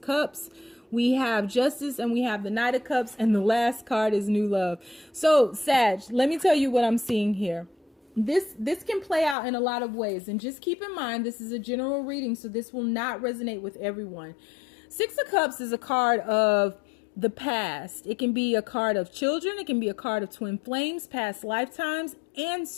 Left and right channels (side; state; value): right; drops out; at 9.3 s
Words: Cups. We have Justice, and we have the Knight of Cups. And the last card is New Love. So, Sag, let me tell you what I'm seeing here. This can play out in a lot of ways. And just keep in mind, this is a general reading, so this will not resonate with everyone. Six of Cups is a card of the past. It can be a card of children. It can be a card of twin flames, past lifetimes, and